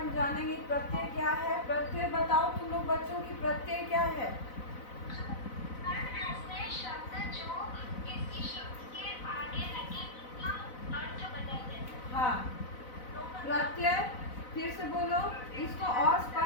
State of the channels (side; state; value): right; late; 4.0 ms